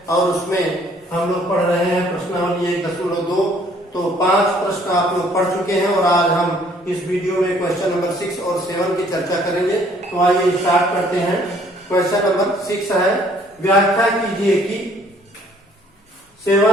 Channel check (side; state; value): both; normal; correlation 0.60